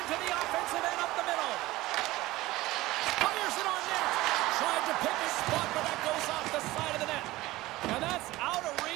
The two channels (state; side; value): quieter; left; 18.2 dB